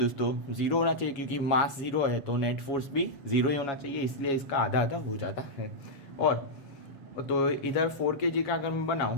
0 होना चाहिए, क्योंकि मास 0 है तो नेट फोर्स भी 0 ही होना चाहिए, इसलिए इसका आधा आधा हो जाता है। और तो इधर 4 kg का अगर मैं बनाऊँ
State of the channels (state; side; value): late; right; 7.3 ms